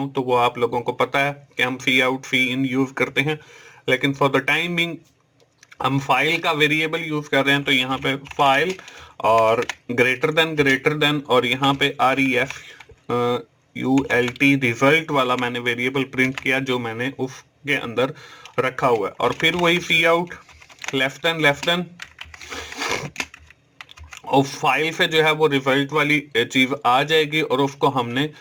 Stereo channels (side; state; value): both; identical; correlation 1.00